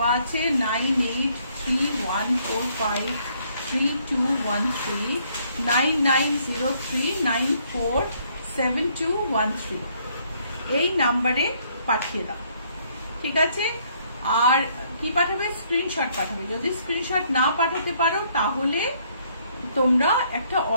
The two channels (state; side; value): inverted; both; correlation -0.67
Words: আছে 9831453213 9903947213, এই নাম্বারে পাঠিয়ে দাও, ঠিক আছে? আর কি পাঠাবে? স্ক্রিনশট পাঠাবে। যদি স্ক্রিনশট না পাঠাতে পারো তাহলে তোমরা একটা